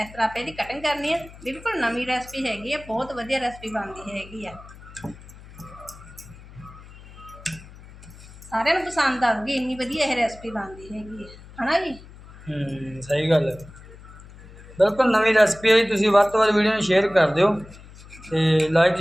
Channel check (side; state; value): left; noise; hum, 19 dB below the sound